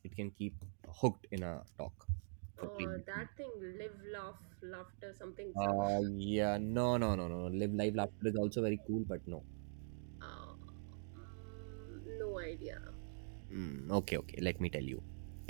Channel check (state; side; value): silent; left; digital silence